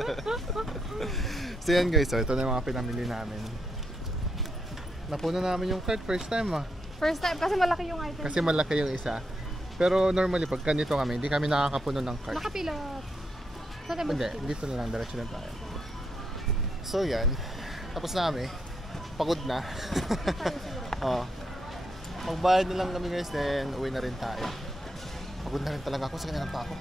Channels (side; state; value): both; normal; correlation 0.80